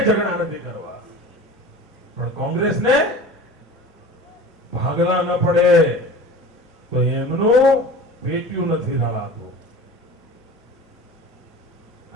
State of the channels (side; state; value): both; normal; correlation 0.38